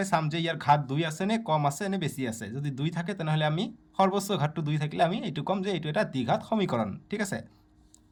চাম যে ইয়াৰ ঘাত 2 আছে নে কম আছে নে বেছি আছে। যদি 2 থাকে তেনেহ'লে আমি সৰ্বোচ্চ ঘাতটো 2 থাকিলে আমি এইটো ক'ম যে এইটো এটা দ্বিঘাত সমীকৰণ, ঠিক আছে।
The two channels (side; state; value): both; identical; correlation 1.00